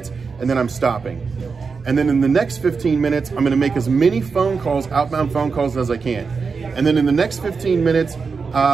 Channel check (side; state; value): left; quieter; 5.0 dB